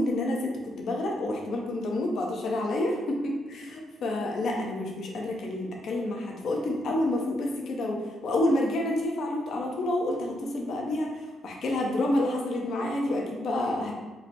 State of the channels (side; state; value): both; normal; correlation 0.78